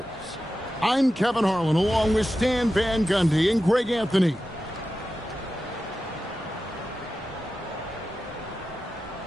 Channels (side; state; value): both; normal; correlation 0.92